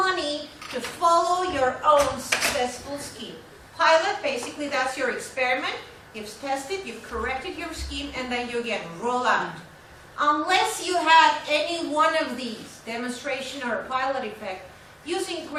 to follow your own successful scheme. Pilot, basically that's your experiment, you've tested, you've corrected your scheme, and then you again roll out. Unless you have any one of these, demonstration or a pilot effect, using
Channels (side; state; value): both; identical; correlation 1.00